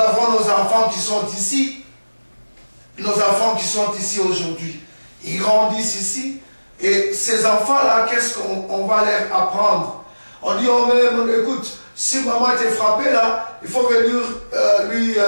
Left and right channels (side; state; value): both; inverted; correlation -1.00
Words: nos enfants qui sont ici. Nos enfants qui sont ici aujourd'hui. Ils grandissent ici. Et ces enfants-là, qu'est-ce qu'on va leur apprendre? On dit, oh même, écoute, si maman t'est frappée là, il faut venir lui